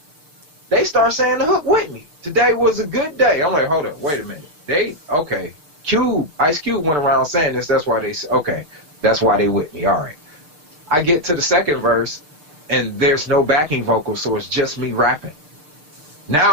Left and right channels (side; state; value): left; late; 6.7 ms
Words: they start saying the hook with me. Today was a good day. I'm like, hold up, wait a minute. Okay. Ice Cube went around saying this. That's why okay. That's why they with me. All right. I get to the second verse, and there's no backing vocal, so it's just me rapping.